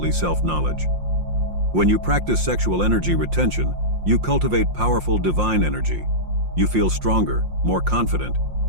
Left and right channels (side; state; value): left; late; 5.7 ms